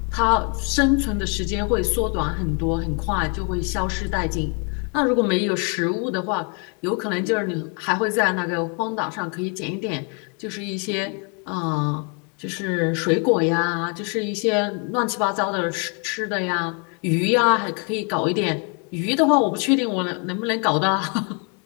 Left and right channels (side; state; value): right; quieter; 36.5 dB